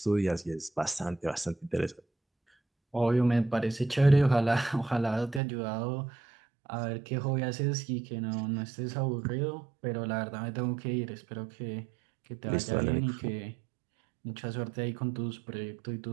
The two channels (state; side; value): drops out; left; at 5.4 s